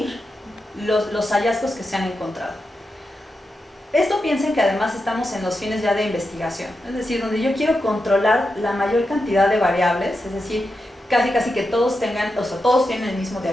los hallazgos que se han encontrado. Esto piensen que además estamos en los fines ya de investigación, es decir, donde yo quiero controlar la mayor cantidad de variables, es decir, casi que todos tengan, o sea, todos tienen el mismo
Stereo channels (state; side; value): normal; both; correlation 0.88